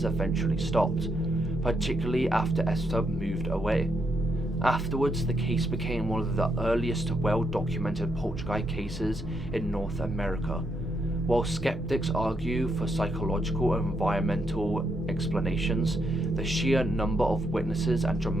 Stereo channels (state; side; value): normal; both; correlation 0.78